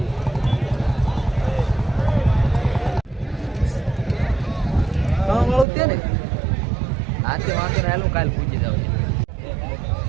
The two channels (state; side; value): drops out; left; at 5.7 s